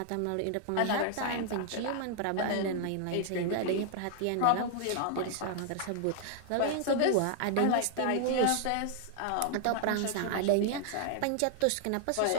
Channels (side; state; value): both; different; correlation 0.00